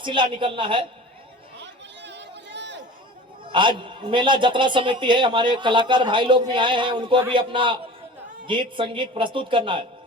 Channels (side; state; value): both; normal; correlation 0.39